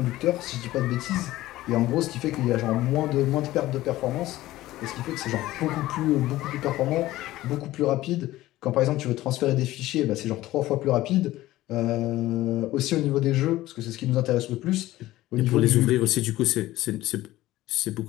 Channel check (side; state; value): right; quieter; 16.3 dB